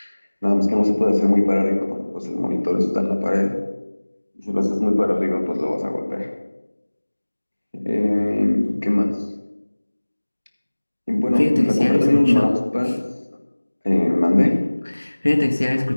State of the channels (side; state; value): both; inverted; correlation -1.00